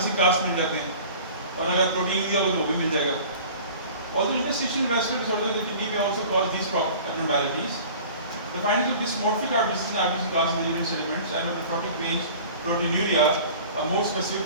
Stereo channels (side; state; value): both; inverted; correlation -0.43